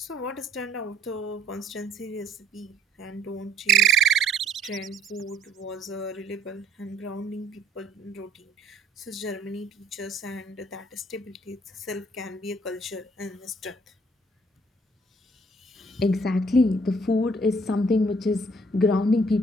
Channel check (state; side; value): normal; both; correlation 0.60